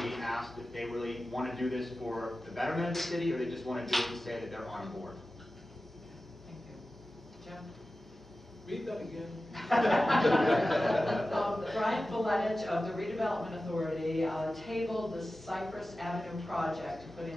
be asked if they really want to do this for the betterment of the city, or they just want to do it to say that they're on board. Thank you. Jim? Read that again. Brian Valetich of the Redevelopment Authority tabled the Cypress Avenue project to put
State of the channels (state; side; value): normal; both; correlation 0.95